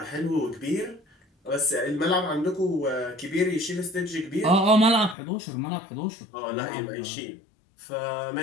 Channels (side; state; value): right; drops out; at 5.2 s